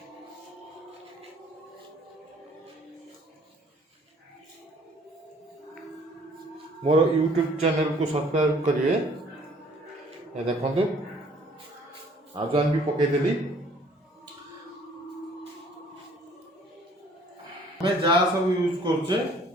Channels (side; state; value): both; normal; correlation 0.57